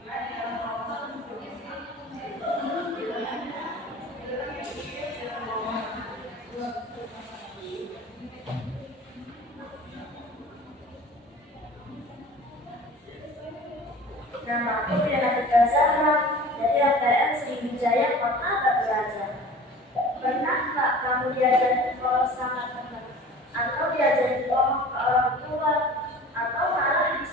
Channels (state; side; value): normal; both; correlation 0.42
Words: Nama aku Yana Putra Zahra dari APM Sriwijaya Kota Batu. Pernah nggak kamu diajari kalau sangat teman, atau diajari ngomong ke orang tua, atau malah